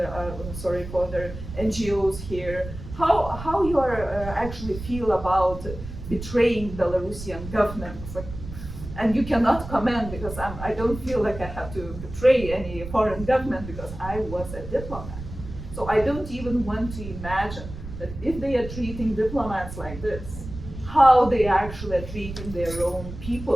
NGOs here, how you are actually feel about betraying Belarusian government. And you cannot comment, because I don't feel like I have to betray any foreign government, because I was a diplomat. So I don't even want to imagine that if they are treating diplomats like this, how they actually are treating their own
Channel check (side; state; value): right; noise; rumble, 11 dB below the sound